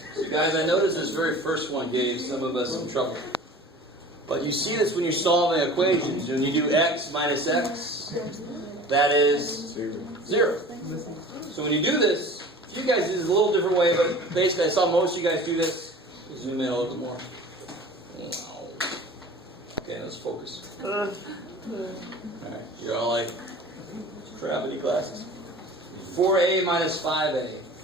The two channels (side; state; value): both; normal; correlation 0.41